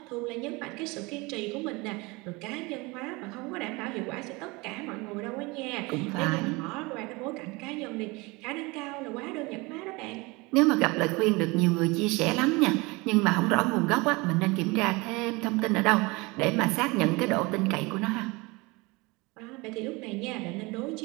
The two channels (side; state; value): left; quieter; 24.8 dB